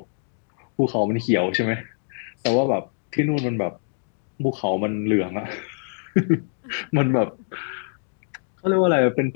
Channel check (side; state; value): right; silent; digital silence